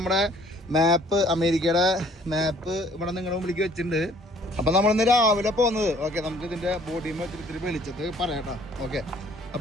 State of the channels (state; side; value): normal; both; correlation 0.57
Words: മാപ്പ്, അമേരിക്കയുടെ മാപ്പ് ഇവിടെ നിങ്ങളുടെ മുമ്പിലേക്ക് വെച്ചിട്ടുണ്ട്. അപ്പം നമ്മളിന്ന് രാവിലെ പോകുന്നത്. ഓക്കെ, നമുക്ക് ഇതിൻ്റെ ബോഡിയും വെച്ചിട്ട് വിളിച്ചത് പറയാട്ടോ. ഓക്കെ,